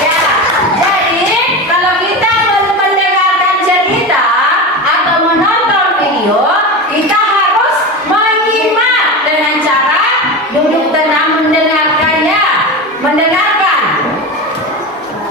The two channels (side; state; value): both; normal; correlation 0.24